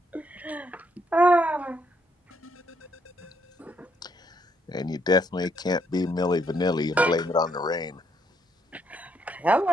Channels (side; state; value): both; normal; correlation 0.73